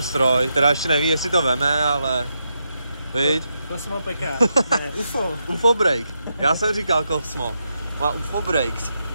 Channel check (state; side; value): inverted; both; correlation -0.84